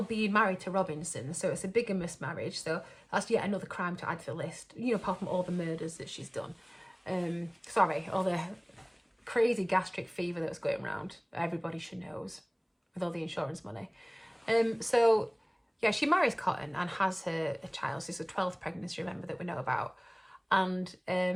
being married to Robinson, so it's a bigamous marriage, so that's yet another crime to add to the list, you know, apart from all the murders that she's done. All the crazy gastric fever that was going around, everybody should knows, with all the insurance money. So, yeah, she marries Cotton and has a child, so it's a 12th pregnancy, remember, that we know about, and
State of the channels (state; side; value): identical; both; correlation 1.00